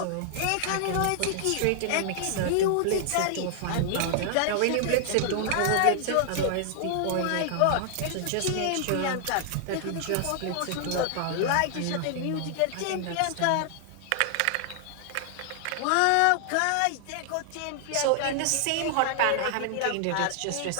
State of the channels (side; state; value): both; different; correlation 0.00